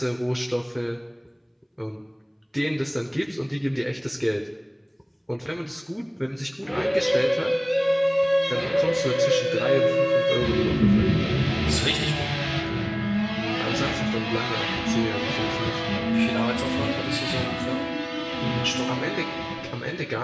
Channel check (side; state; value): both; identical; correlation 1.00